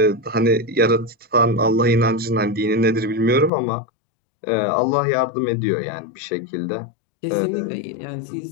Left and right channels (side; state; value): right; drops out; at 3.5 s